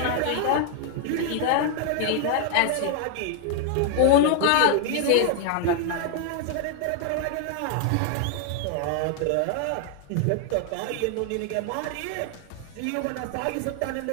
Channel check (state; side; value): different; both; correlation 0.00